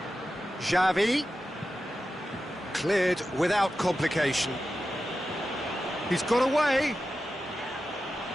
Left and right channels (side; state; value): both; normal; correlation 0.92